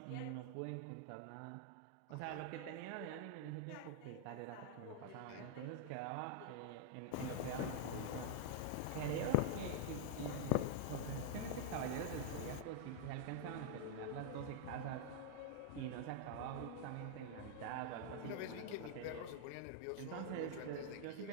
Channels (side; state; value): both; different; correlation -0.01